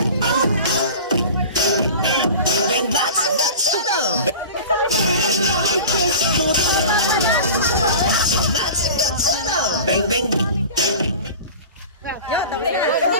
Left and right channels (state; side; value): inverted; both; correlation -0.36